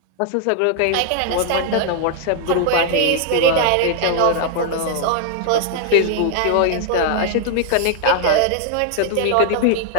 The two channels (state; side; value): different; both; correlation 0.00